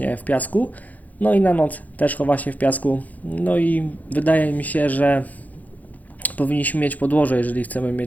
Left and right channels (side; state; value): right; late; 0.078 ms